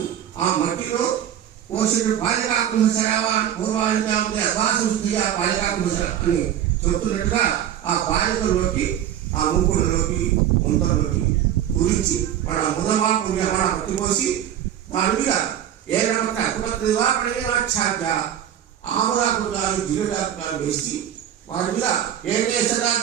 ఆ మట్టిలో పోషకుడు బాలికాకుంభసరావా పూర్వానికి అద్వాసంస్థి ఆ బాలికాకుంభసర అని చెప్తున్నట్టుగా ఆ బాలికల్లోకి ఆ ముంకుడులోకి ముంతలోకి కురించి వాళ్ళ ముదమా పుణ్యమా పట్టిపోసి దాని మీద ఏకమక్క అకుమత్రివాక్షాధ్య ఆమరాకుడాలు జిల్లాకుడాలు వేసి వారి మీద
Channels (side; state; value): left; quieter; 10.4 dB